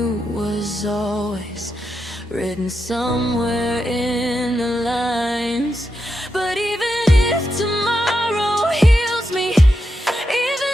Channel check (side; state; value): both; normal; correlation 0.86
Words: was always written somewhere in the lines. But even if tomorrow heals me,